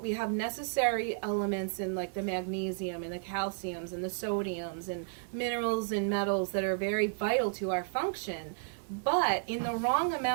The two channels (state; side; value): silent; left; digital silence